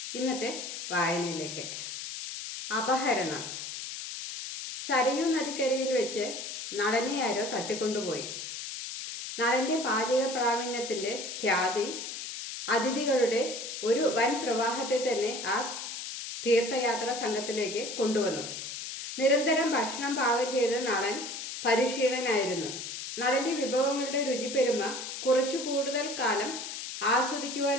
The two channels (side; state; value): left; noise; hiss, 7 dB below the sound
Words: ഇന്നത്തെ വായനയിലേക്ക്. അപഹരണം. സരയൂ നദിക്കരയിൽ വെച്ച് നളനെ ആരോ തട്ടിക്കൊണ്ടുപോയി. നളൻ്റെ പാചക പ്രാവീണ്യത്തിൻ്റെ ഖ്യാതി അതിഥികളുടെ ഒരു വൻ പ്രവാഹത്തെ തന്നെ ആ തീർത്ഥയാത്രാ സംഘത്തിലേക്ക് കൊണ്ടുവന്നു. നിരന്തരം ഭക്ഷണം പാകം ചെയ്ത് നളൻ പരിശീലനായിരുന്നു. നളൻ്റെ വിഭവങ്ങളുടെ രുചിപ്പെരുമ കുറച്ചു കൂടുതൽ കാലം ആസ്വദിക്കുവാൻ